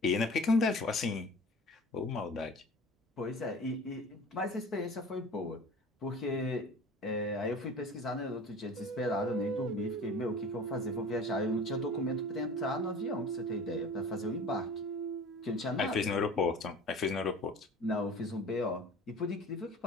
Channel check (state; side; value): normal; both; correlation 0.41